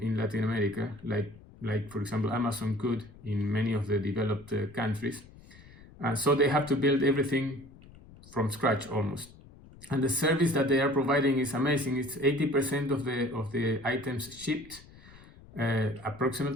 in Latin America, like for example Amazon could in many of the developed countries. So they have to build everything from scratch almost. And the service that they are providing is amazing. It's 80% of the items shipped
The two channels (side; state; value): left; noise; rumble, 21 dB below the sound